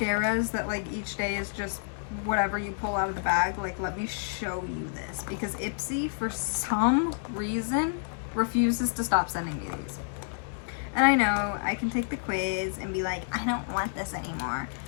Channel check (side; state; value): right; silent; digital silence